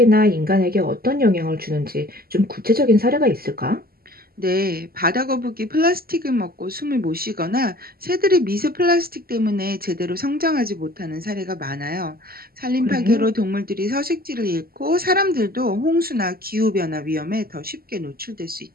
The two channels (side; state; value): left; late; 0.44 ms